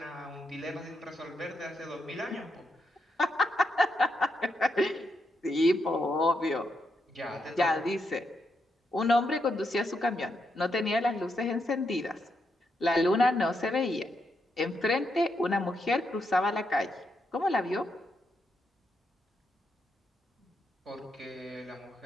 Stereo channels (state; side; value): normal; both; correlation 0.82